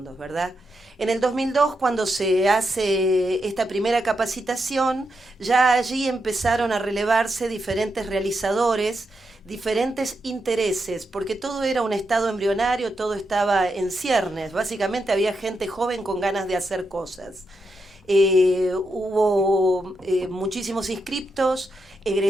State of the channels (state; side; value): normal; both; correlation 0.84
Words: ¿verdad? En el 2002, cuando se hace esta primera capacitación, ya allí empezaron a relevarse diferentes realizadores, diferentes intereses, porque todo era un estado embrionario, todo estaba en ciernes. Básicamente había gente joven con ganas de hacer cosas. Hubo muchísimos inscriptos,